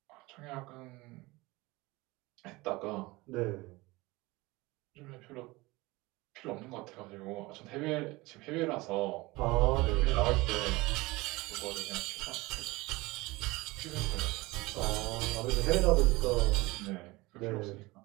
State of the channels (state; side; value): quieter; left; 21.9 dB